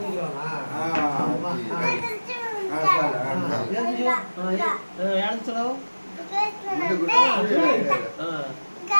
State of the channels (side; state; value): both; inverted; correlation -1.00